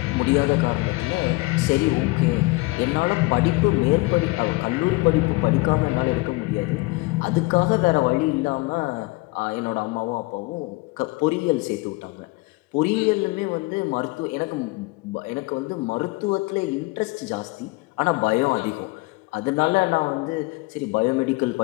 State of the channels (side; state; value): right; quieter; 23.4 dB